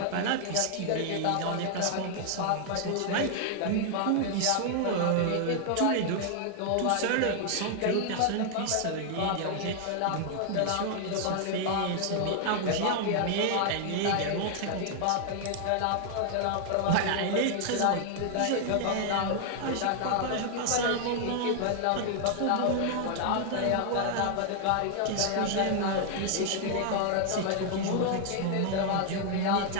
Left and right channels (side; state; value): both; different; correlation 0.00